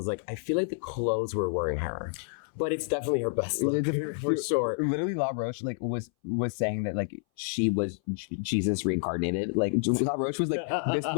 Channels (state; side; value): silent; right; 58 dB below the other